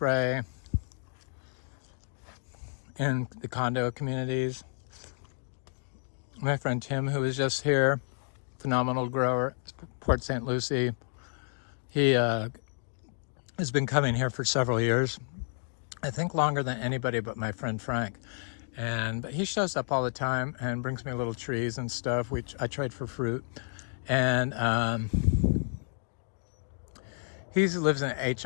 in the condo communities. My friend Tim, who was just here, phenomenal grower, Port St. Lucie, he has been coming here for several years. I think longer than anybody but my friend Frank. But he shows up all the time and brings me little trees and stuff, which I trade for fruit. And he lives in an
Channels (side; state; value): right; silent; 57 dB below the other